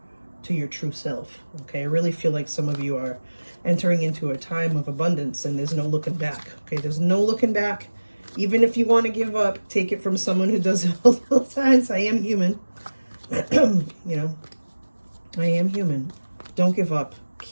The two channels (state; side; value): inverted; both; correlation -1.00